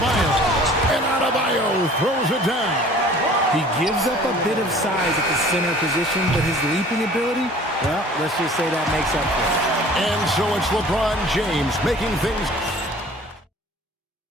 And Adebayo throws it down. He gives up a bit of size at the center position, but his leaping ability, well, let's just say that makes up for it. And so it's LeBron James making things.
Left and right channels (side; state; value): both; normal; correlation 0.49